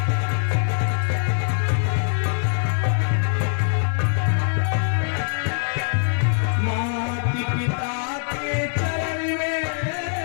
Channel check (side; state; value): right; silent; 56 dB below the other